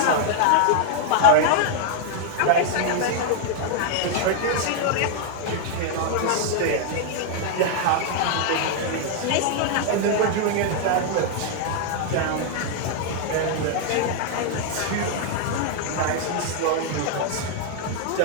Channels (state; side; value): different; both; correlation 0.00